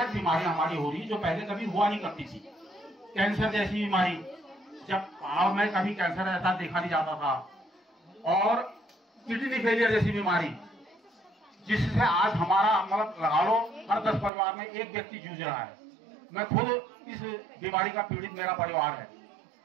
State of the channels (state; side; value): drops out; left; at 14.3 s